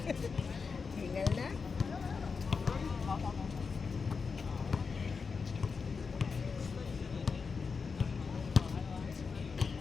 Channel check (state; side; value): quieter; right; 5.1 dB